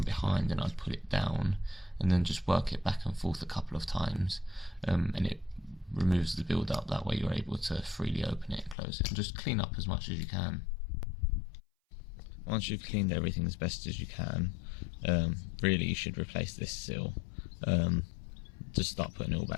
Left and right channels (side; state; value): right; drops out; at 8.8 s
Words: behind and I'd put it down and then just work it back and forth a couple of times, and it removes the build up. That way you're able to freely open it and close it, and just clean up as much as you can. Once you've cleaned everything as best as you can, really you should replace this seal. Just start putting it all